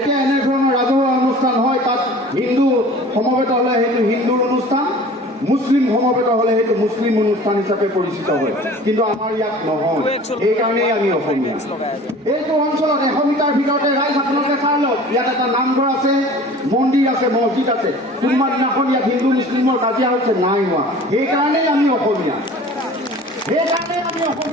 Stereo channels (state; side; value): normal; both; correlation 0.44